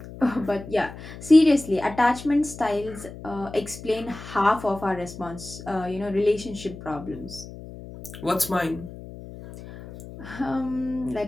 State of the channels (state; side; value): noise; left; hum, 14 dB below the sound